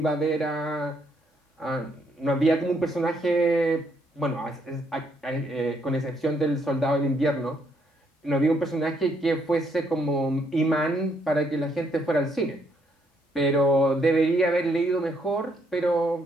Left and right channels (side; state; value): both; normal; correlation 0.72